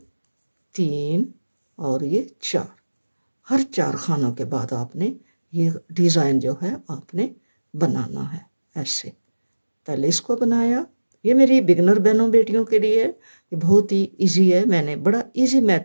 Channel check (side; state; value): both; inverted; correlation -1.00